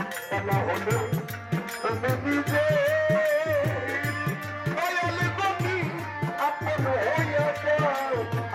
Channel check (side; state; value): both; identical; correlation 1.00